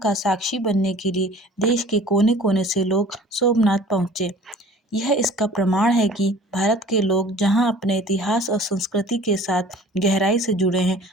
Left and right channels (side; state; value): both; normal; correlation 0.47